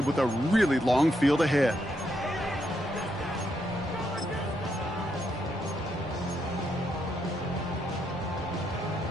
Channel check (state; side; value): normal; both; correlation 0.78